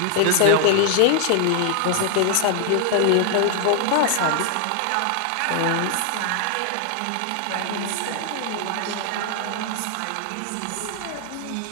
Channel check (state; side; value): different; both; correlation 0.00